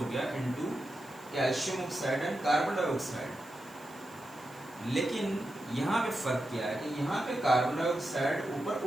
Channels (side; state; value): right; noise; hiss, 23 dB below the sound